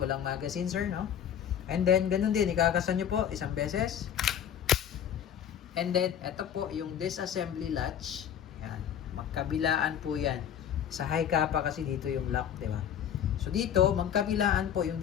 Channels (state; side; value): quieter; right; 9.2 dB